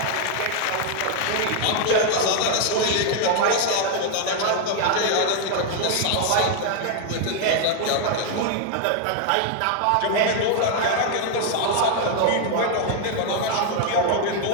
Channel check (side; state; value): both; different; correlation 0.00